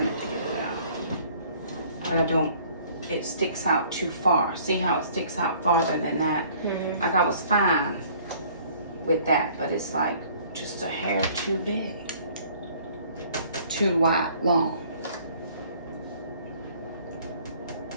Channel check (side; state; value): both; inverted; correlation -0.56